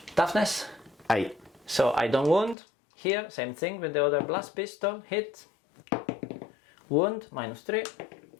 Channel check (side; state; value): right; drops out; at 2.6 s